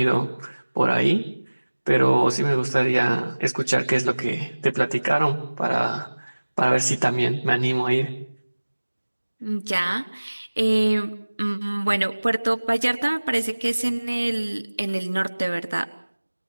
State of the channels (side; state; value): both; inverted; correlation -1.00